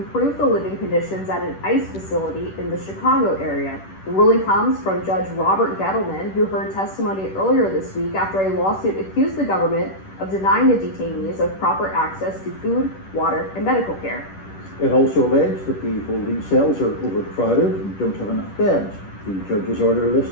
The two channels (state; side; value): late; right; 10 ms